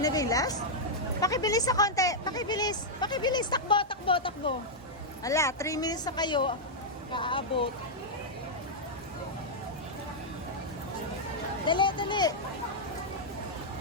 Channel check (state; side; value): normal; both; correlation -0.05